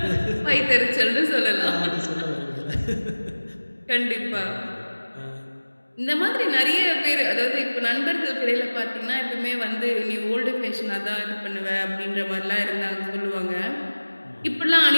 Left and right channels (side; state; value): both; inverted; correlation -1.00